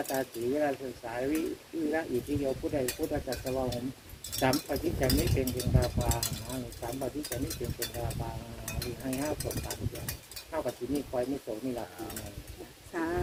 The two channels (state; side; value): identical; both; correlation 1.00